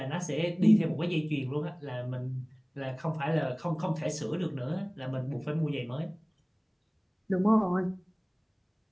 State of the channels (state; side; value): identical; both; correlation 1.00